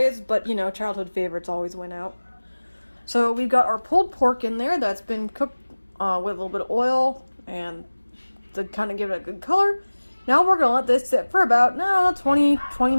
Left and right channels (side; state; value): both; inverted; correlation -1.00